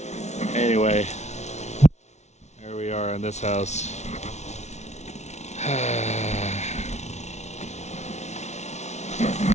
Anyway, there we are in this house.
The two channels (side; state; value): right; late; 0.32 ms